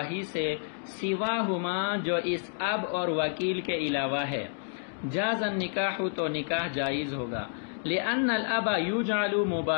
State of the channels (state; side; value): silent; right; digital silence